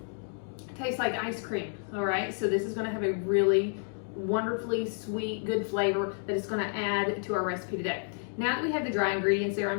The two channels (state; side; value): silent; right; 57 dB below the other